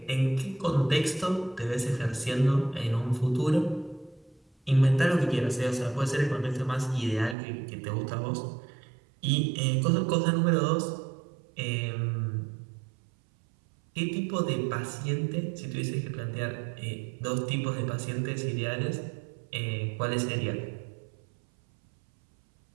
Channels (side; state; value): left; drops out; at 7.4 s